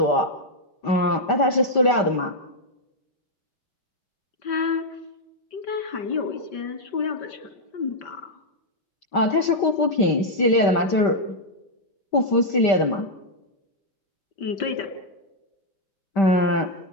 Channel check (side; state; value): right; late; 5.1 ms